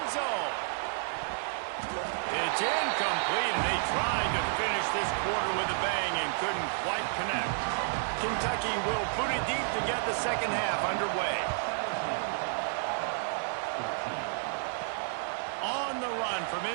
zone. It's incomplete, and they tried to finish this quarter with a bang and couldn't quite connect. Kentucky will boot it deep to get the second half underway. On the run from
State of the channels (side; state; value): left; silent; digital silence